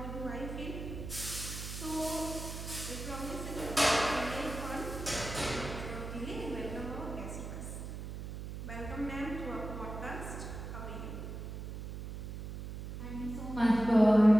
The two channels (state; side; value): noise; right; hum, 8 dB below the sound